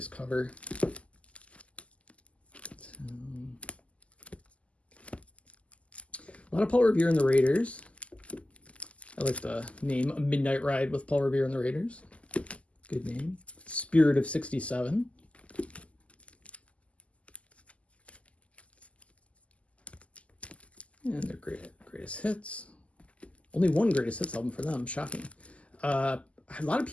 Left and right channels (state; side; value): late; right; 0.062 ms